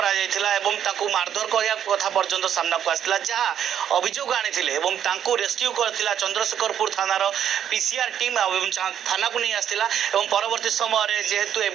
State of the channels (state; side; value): quieter; left; 9.5 dB